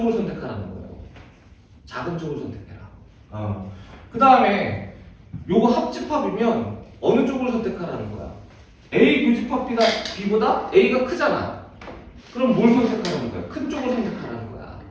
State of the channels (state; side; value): identical; both; correlation 1.00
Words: 선택하라는 거예요. 작은 쪽을 선택해라. 그 다음에 요거 합집합이면 어느 쪽을 선택하라는 거야? A 교집합 B보다 A가 크잖아. 그럼 뭘 선택하라는 거야? 큰 쪽을 선택하라는 거야.